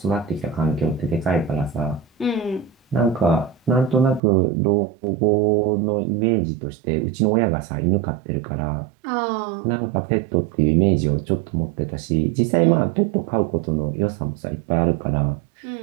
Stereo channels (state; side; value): drops out; left; at 4.2 s